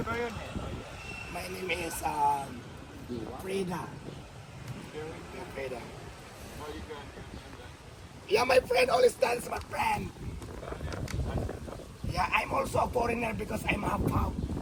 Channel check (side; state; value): both; identical; correlation 1.00